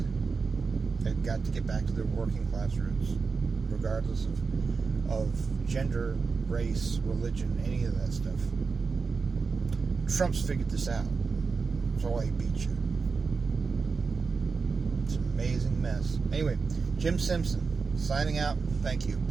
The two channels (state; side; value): quieter; left; 4.8 dB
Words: They've got to get back to their working class roots, regardless of gender, race, religion, any of that stuff. Trump's figured this out. That's why he beat you. It's an amazing mess. Anyway, Jim Simpson Signing out. Thank you.